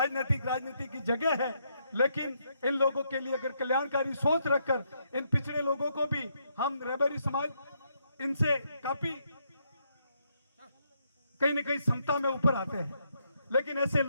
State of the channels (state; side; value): inverted; both; correlation -0.76